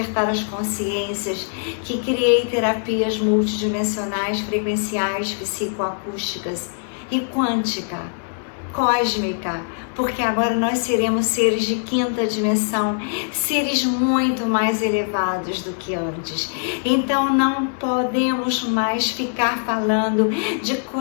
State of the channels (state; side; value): silent; right; digital silence